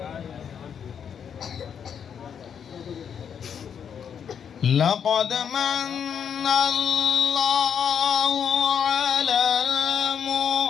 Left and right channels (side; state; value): right; quieter; 7.8 dB